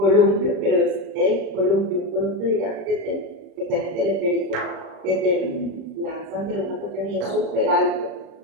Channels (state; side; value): late; left; 36 ms